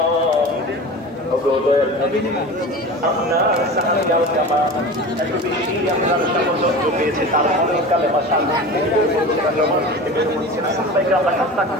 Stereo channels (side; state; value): both; normal; correlation 0.33